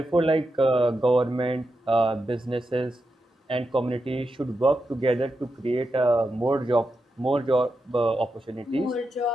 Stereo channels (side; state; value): both; normal; correlation 0.87